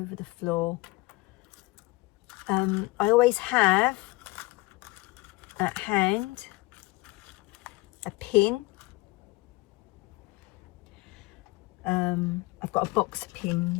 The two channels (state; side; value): quieter; right; 22.8 dB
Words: the floor. I always have at hand a pin. I've got a box of